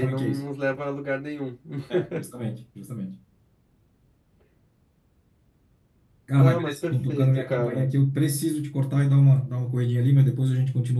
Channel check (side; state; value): both; identical; correlation 1.00